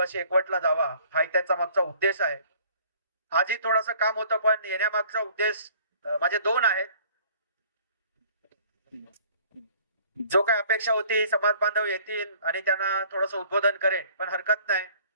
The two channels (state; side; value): inverted; both; correlation -0.55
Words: एकवटला जावा, हा त्याचा मागचा उद्देश आहे. आजही थोडासा काम होतं, पण येण्यामागचा उद्देश माझे दोन आहेत. जो काय अपेक्षा होती समाज बांधव येतील आणि त्यांना थोडस उद्बोधन करेन, पण हरकत नाही.